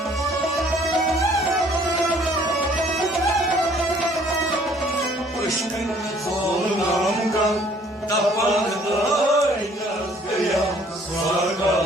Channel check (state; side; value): normal; both; correlation 0.59